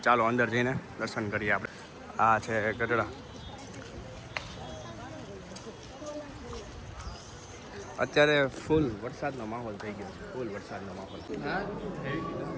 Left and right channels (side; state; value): both; identical; correlation 1.00